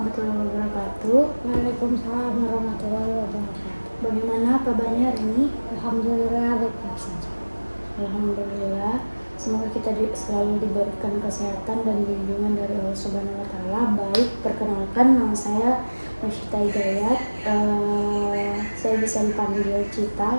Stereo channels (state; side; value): inverted; both; correlation -1.00